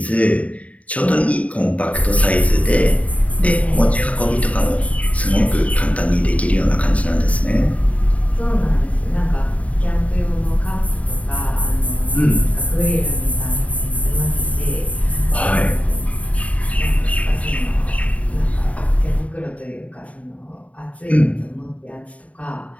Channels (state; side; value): late; right; 0.067 ms